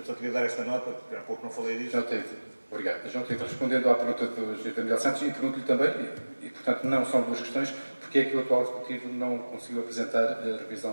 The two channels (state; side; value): inverted; both; correlation -1.00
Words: só queria dar esta nota, porque há pouco não falei disso. Obrigado. João Tito, respondendo à pergunta do Sr. Miguel Santos, e pergunto-lhe também, e portanto não são 2 questões, porque é que o atual Executivo não conseguiu apresentar a